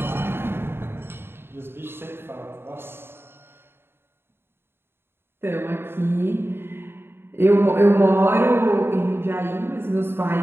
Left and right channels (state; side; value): late; left; 0.11 ms